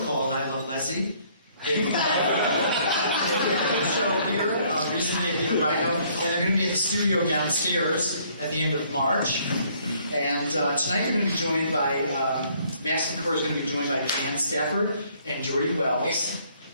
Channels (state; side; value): inverted; both; correlation -0.63